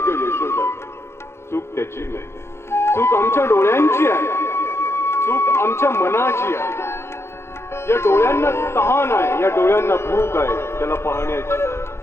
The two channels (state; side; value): late; right; 0.12 ms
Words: ग यशोदा, चूक त्याची नाही, चूक आमच्या डोळ्यांची आहे, चूक आमच्या मनाची आहे. या डोळ्यांना तहान आहे, या डोळ्यांना भूक आहे त्याला पाहण्याची.